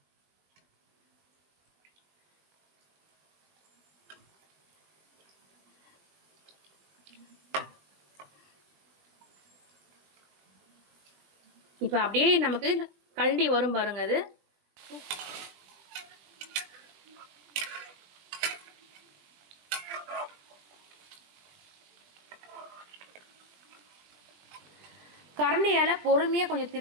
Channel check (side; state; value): left; late; 20 ms